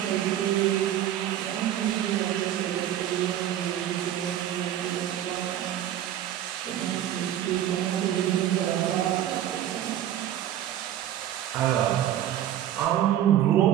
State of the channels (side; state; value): left; quieter; 11.6 dB